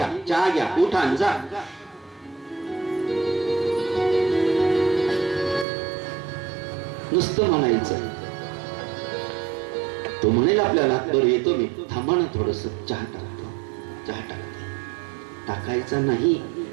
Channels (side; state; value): left; drops out; at 5.7 s